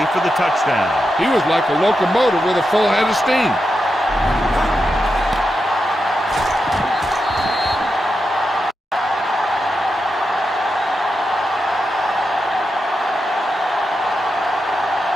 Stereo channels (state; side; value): normal; both; correlation 0.87